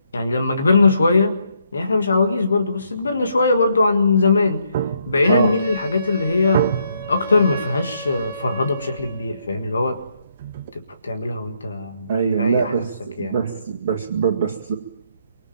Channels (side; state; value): both; inverted; correlation -0.74